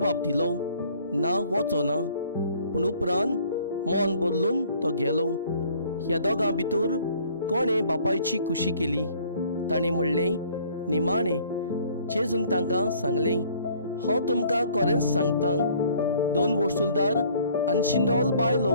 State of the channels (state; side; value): inverted; both; correlation -0.57